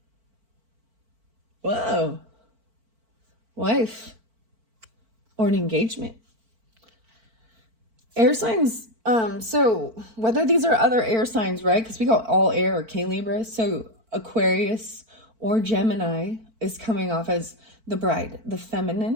Whoa. Wife, or an engagement. Air signs. So whether these are other air signs, right? Because we got all air, okay, Libra. So Aquarius or Gemini is coming off as the bride, the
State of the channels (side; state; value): left; late; 4.5 ms